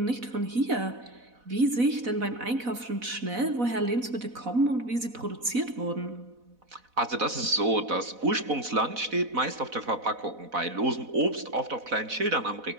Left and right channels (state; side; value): late; left; 4.1 ms